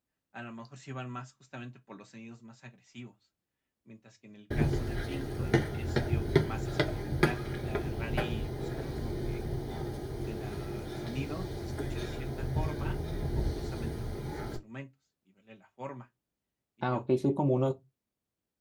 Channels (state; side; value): identical; both; correlation 1.00